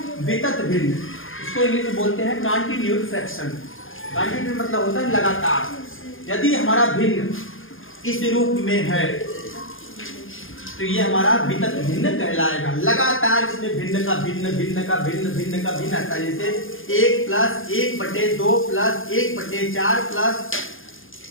वितत भिन्न। इसको इंग्लिश में बोलते हैं कॉन्टिन्यूड फ्रैक्शन। कॉन्टिन्यूड मतलब होता है लगातार। यदि हमारा भिन्न इस रूप में है तो ये हमारा वितत भिन्न कहलाएगा। लगातार इसमें भिन्न का भिन्न, भिन्न का भिन्न, भिन्न का भिन्न आता है। जैसे 1 + 1/2 + 1/4 +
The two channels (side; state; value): right; late; 0.59 ms